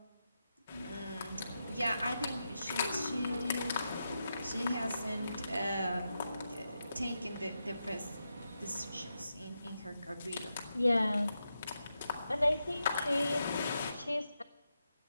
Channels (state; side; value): inverted; both; correlation -0.87